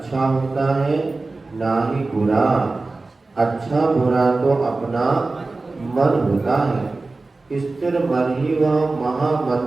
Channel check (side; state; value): left; quieter; 3.5 dB